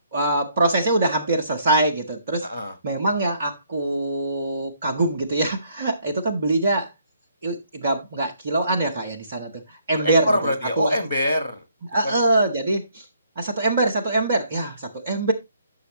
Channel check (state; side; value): inverted; both; correlation -0.68